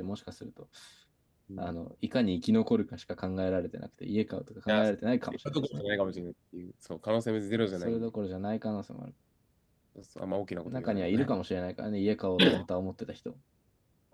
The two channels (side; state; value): both; identical; correlation 1.00